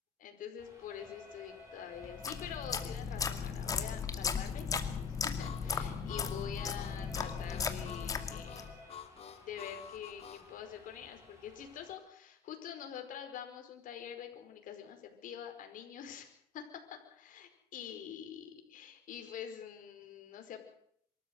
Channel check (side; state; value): right; quieter; 6.3 dB